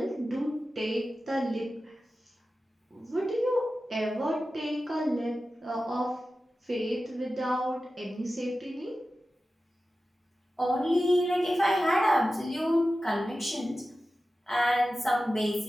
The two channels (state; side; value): normal; both; correlation 0.94